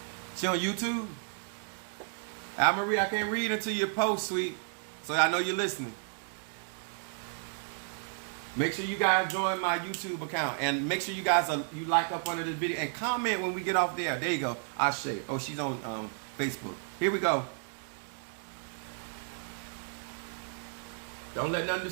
She on YouTube? Al Marie, I can't read until you post, sweet. So I know you're listening. Make sure you guys join my YouTube account. And make sure you guys you like up under this video. And comment when we get off there. There you go. Ashe. Oh, she's on Facebook. Here we go. Don't let nothing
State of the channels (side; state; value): left; silent; 56 dB below the other